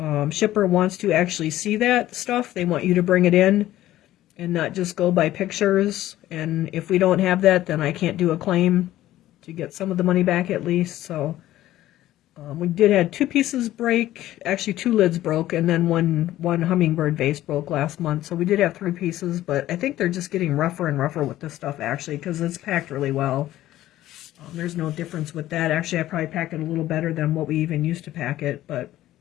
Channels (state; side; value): quieter; right; 14.3 dB